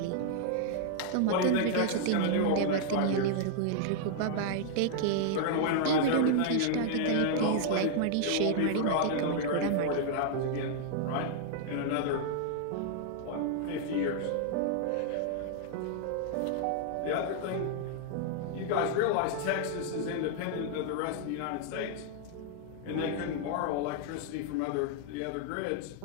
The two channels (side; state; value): both; different; correlation -0.01